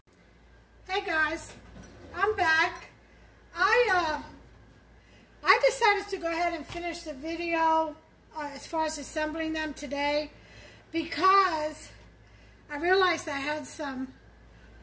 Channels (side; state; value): both; identical; correlation 1.00